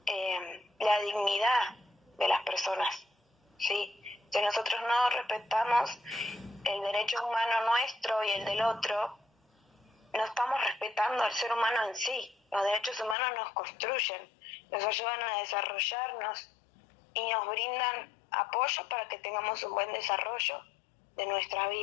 la dignidad de las personas, ¿sí? Si nosotros no respetamos el derecho humano nuestro y el del otro, no estamos respetando al ser humano en sí. Los derechos humanos nos construyen, nos ayudan a desarrollarnos y nos brindan apoyo para que tengamos un buen desarrollo de nuestra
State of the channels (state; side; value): drops out; right; at 13.2 s